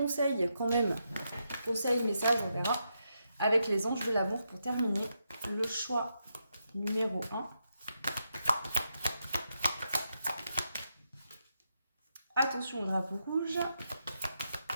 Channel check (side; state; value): both; inverted; correlation -0.83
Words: quand même. Conseils, messages, on verra. Avec les anges de l'amour pour terminer. Le choix numéro 1. Attention au drapeau rouge.